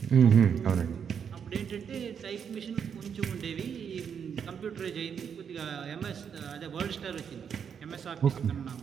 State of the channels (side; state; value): left; quieter; 7.4 dB